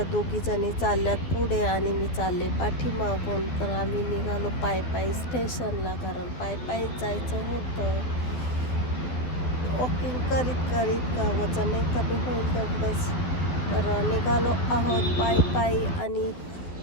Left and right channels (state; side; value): late; right; 12 ms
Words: दोघी जणी चालल्यात पुढे आणि मी चालले पाठीमागून. तर आम्ही निघालो पायी स्टेशनला, कारण पायी जायचं होतं. वॉकिंग करीत करीत का वजनही कमी होईल तेवढंच. तर निघालो आहोत पायी आणि